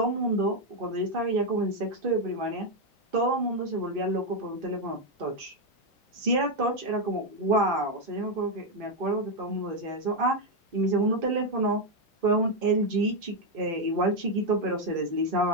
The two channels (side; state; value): both; normal; correlation 0.03